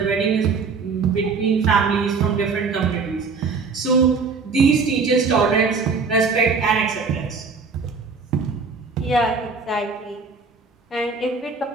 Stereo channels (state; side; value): quieter; left; 4.8 dB